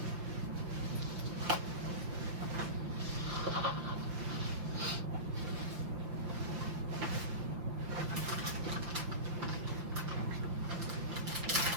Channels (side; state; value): left; late; 5.8 ms